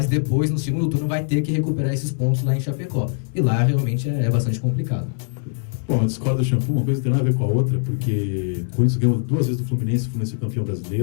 depois, no segundo turno, vai ter que recuperar esses pontos lá em Chapecó. E lá realmente é bastante complicado. Bom, eu discordo do Shampoo, uma coisa não tem nada a ver com a outra, porque o Corinthians ganhou 2 vezes do Fluminense, o Fluminense é campeão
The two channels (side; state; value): right; silent; 64 dB below the other